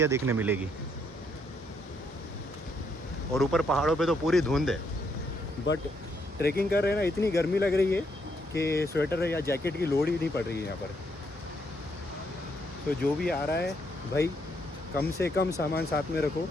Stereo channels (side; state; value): both; normal; correlation 0.74